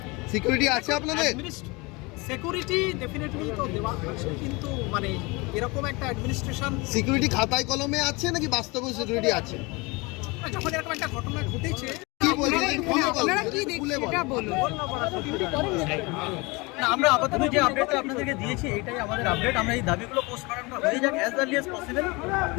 সিকিউরিটি আছে আপনাদের? সিকিউরিটি ডেফিনেটলি তো দেওয়া আছে, কিন্তু মানে এরকম একটা অ্যাডমিনিস্ট্রেশন সিকিউরিটি খাতায় কলমে আছে নাকি বাস্তবে সিকিউরিটি আছে? যখন এরকম একটা ঘটনা ঘটেছে, কি বলছেন আপনারা কি দেখছেন এটা বলুন। না, আমরা আপাতত যে আপডেটটা আপনাদেরকে দিয়েছি এটাই আমাদের আপডেট। আমরা এই দাবিগুলো পোস্টমর্টমটা হয়ে যাক as early as possible,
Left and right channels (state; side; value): quieter; right; 25.8 dB